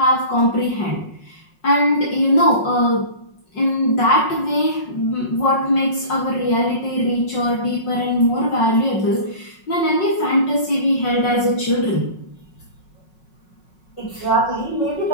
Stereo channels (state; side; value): late; right; 5.5 ms